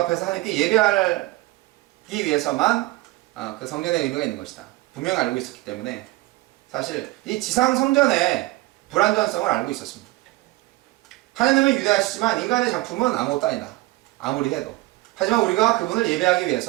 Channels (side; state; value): left; quieter; 19.5 dB